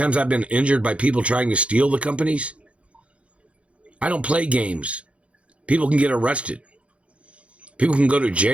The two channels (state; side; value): late; left; 0.062 ms